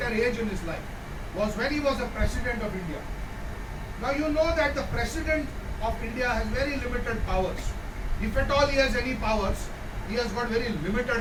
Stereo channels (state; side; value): identical; both; correlation 1.00